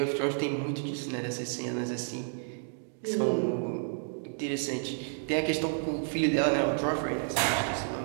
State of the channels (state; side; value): silent; left; digital silence